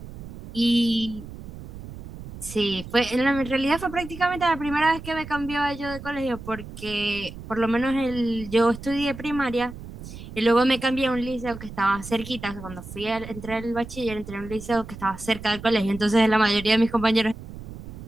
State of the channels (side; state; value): right; noise; rumble, 13 dB below the sound